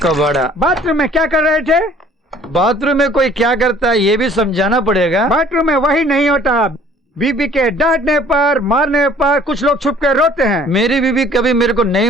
कबाड़ा। बाथरूम में क्या कर रहे थे? बाथरूम में कोई क्या करता है ये भी समझाना पड़ेगा। बाथरूम में वही नहीं होता। बीबी के डांटने पर, मारने पर कुछ लोग छुप कर रोते हैं। मेरी बीबी कभी मेरे को नहीं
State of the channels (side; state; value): both; normal; correlation 0.54